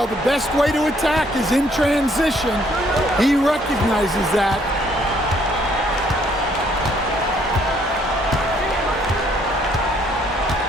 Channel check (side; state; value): both; normal; correlation 0.66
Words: the best way to attack is in transition. He recognizes that.